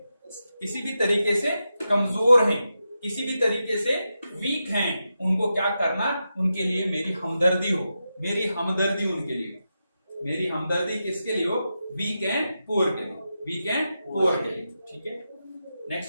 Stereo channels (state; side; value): inverted; both; correlation -0.88